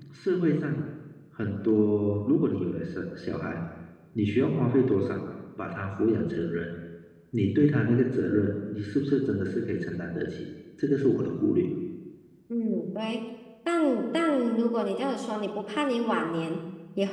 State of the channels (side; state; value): both; identical; correlation 1.00